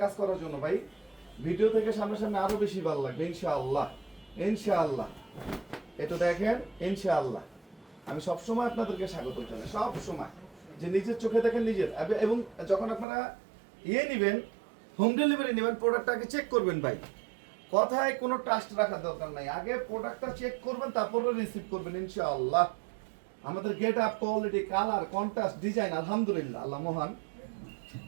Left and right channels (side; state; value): left; drops out; at 13.1 s